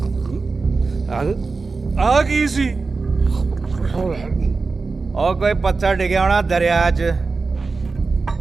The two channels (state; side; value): quieter; left; 4.1 dB